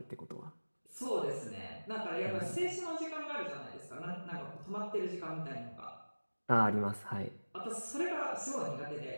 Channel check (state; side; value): inverted; both; correlation -1.00